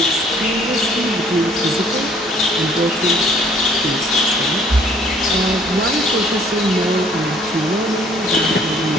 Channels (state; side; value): normal; both; correlation 0.59